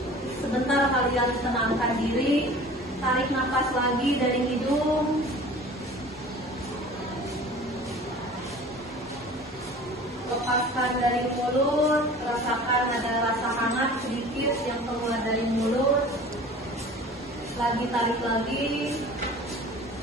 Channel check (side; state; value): both; normal; correlation 0.43